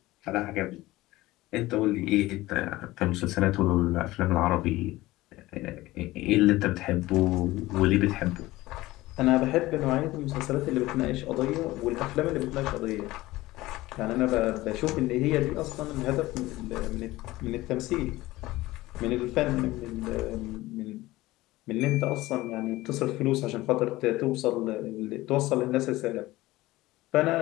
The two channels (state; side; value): quieter; right; 18.2 dB